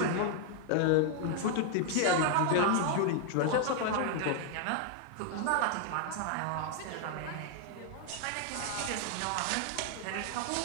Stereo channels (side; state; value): both; different; correlation 0.00